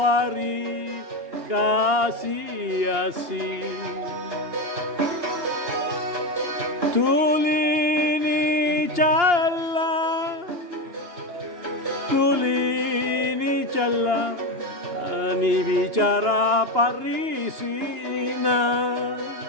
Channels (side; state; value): left; late; 2.9 ms